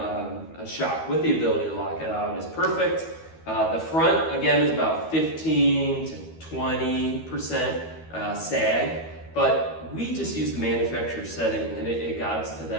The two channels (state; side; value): late; right; 12 ms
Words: a shock with the ability to lock it out is perfect. The front, again, is about 15 to 20% sag. But we just used the manufacturer setting, and it got us to